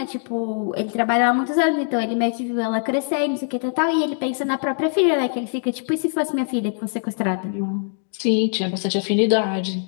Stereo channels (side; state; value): right; silent; digital silence